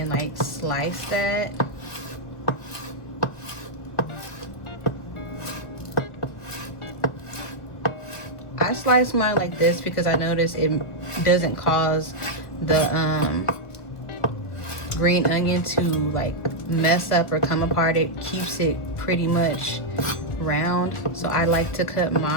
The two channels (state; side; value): late; right; 1.6 ms